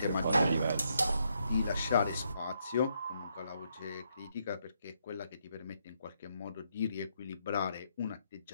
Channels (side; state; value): both; inverted; correlation -0.76